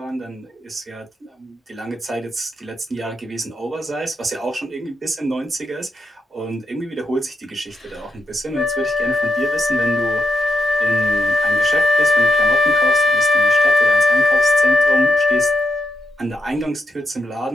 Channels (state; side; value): normal; both; correlation 0.84